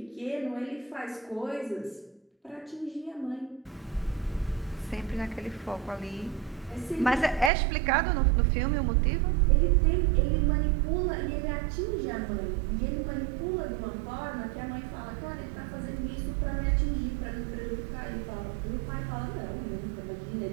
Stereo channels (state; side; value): drops out; left; at 7.5 s